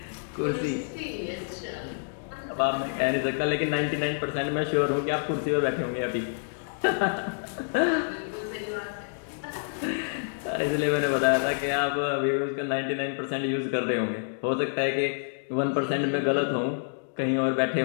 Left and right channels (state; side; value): silent; right; digital silence